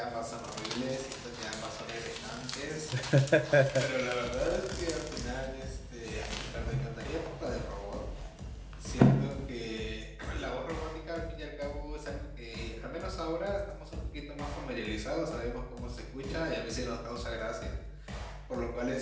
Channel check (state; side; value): identical; both; correlation 1.00